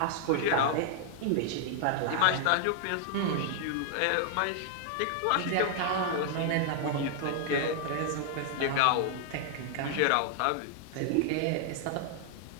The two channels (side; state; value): both; different; correlation 0.00